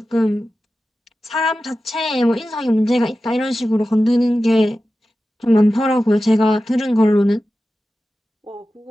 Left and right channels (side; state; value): both; normal; correlation 0.94